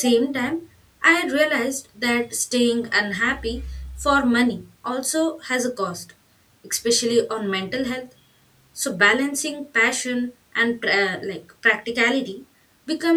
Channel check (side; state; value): both; identical; correlation 1.00